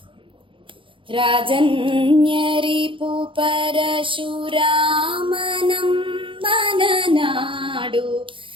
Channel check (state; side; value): late; left; 0.25 ms